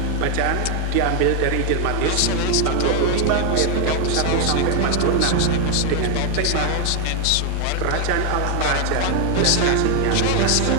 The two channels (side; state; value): both; different; correlation 0.01